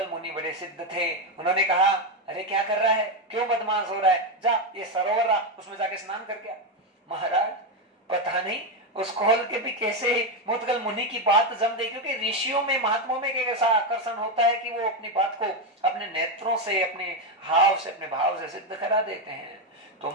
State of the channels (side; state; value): both; normal; correlation 0.08